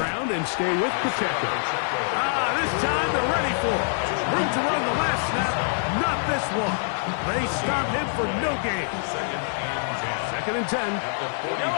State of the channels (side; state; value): right; silent; digital silence